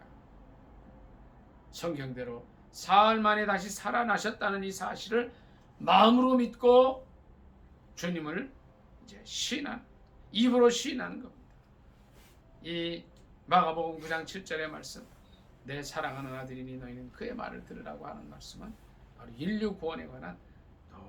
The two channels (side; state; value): both; identical; correlation 1.00